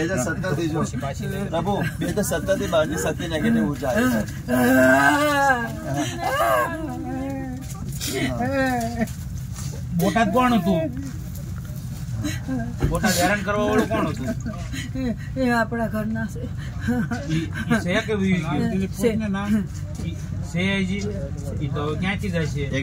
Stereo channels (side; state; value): both; identical; correlation 1.00